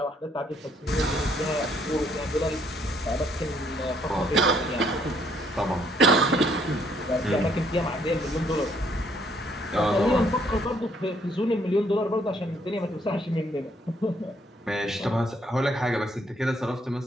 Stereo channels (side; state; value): both; normal; correlation 0.68